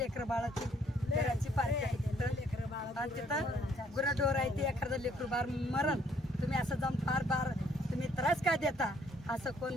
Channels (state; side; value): normal; both; correlation 0.65